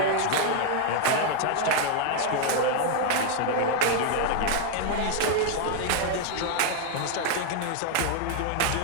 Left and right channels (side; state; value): both; different; correlation 0.00